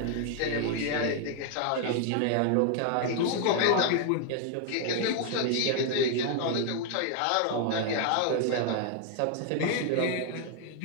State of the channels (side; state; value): both; different; correlation 0.00